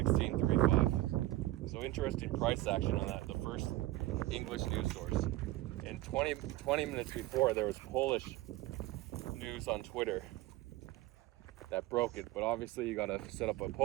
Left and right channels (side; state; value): left; quieter; 16.9 dB